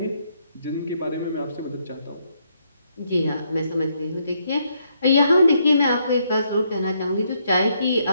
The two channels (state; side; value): inverted; both; correlation -0.74